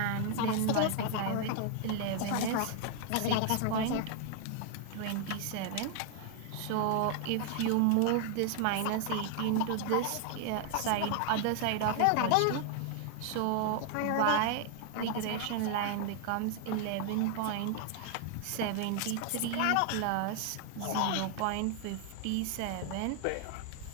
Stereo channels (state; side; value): different; both; correlation 0.00